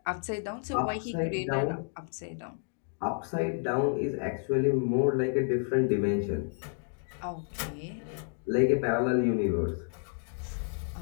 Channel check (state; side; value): silent; right; 57 dB below the other